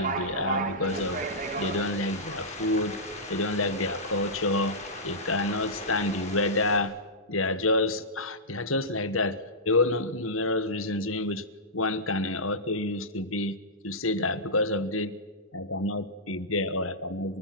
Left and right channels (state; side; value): normal; both; correlation -0.13